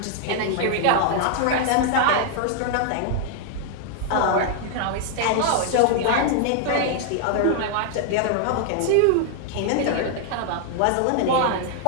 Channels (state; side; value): different; both; correlation 0.00